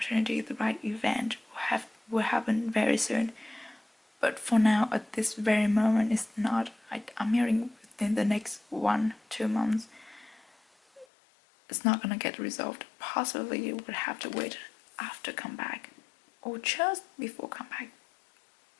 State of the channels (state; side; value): drops out; right; at 11.1 s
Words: the right event will happen very soon. But for now, at this very moment, it's not. I'm hearing within the next 1-2 months, it's not gonna get resolved. Possibly you would have to wait after comeback, or just before comeback.